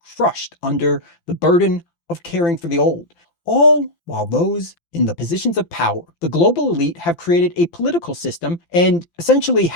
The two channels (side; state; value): right; late; 5.9 ms